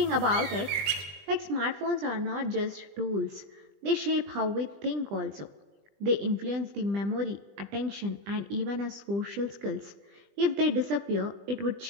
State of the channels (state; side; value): late; left; 20 ms